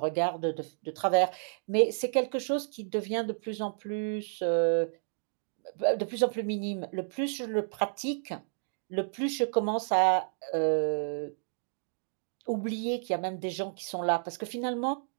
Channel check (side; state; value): left; silent; digital silence